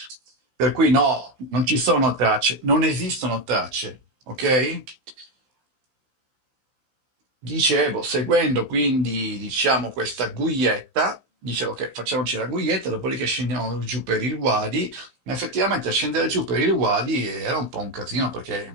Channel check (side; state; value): left; late; 16 ms